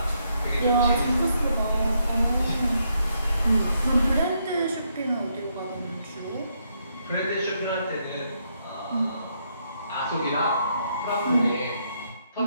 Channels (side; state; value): both; inverted; correlation -0.76